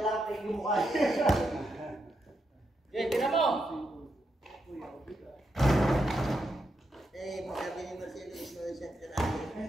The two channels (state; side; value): normal; both; correlation 0.83